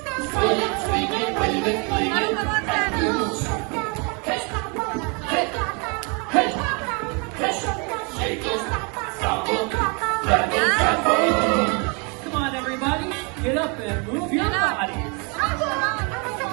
Sway it, swing it, wave it, fling it, and move. Hey, shake it, stop it, grab it, Come on, everybody. Get up and move your bodies.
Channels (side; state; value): left; quieter; 33.0 dB